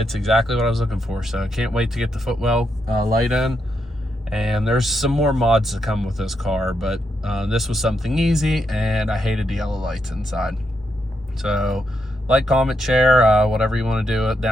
exactly what I was looking for. So I can't wait to get the footwell light in. And there's some more mods to come with this car, but this was something easy, and I hated the yellow lights inside. So like, comment, share, whatever you want to do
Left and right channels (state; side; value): normal; both; correlation 0.81